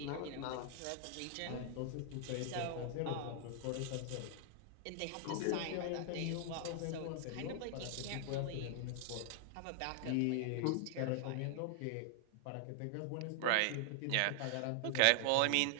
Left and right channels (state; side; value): different; both; correlation -0.01